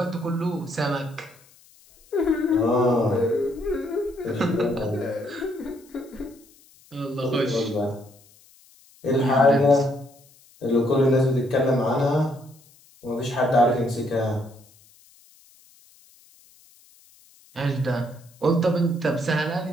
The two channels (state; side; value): noise; left; hiss, 28 dB below the sound